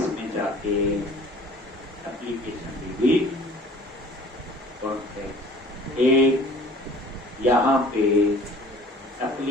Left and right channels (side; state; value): both; normal; correlation 0.49